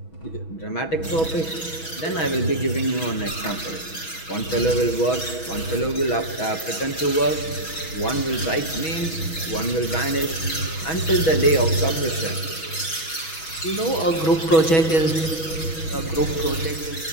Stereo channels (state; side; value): late; right; 6.2 ms